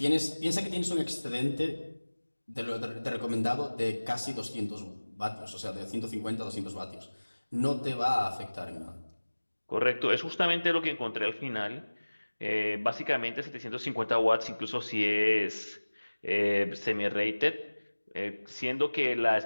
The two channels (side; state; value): both; inverted; correlation -1.00